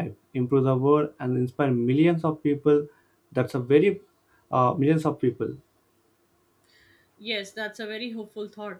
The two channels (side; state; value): both; identical; correlation 1.00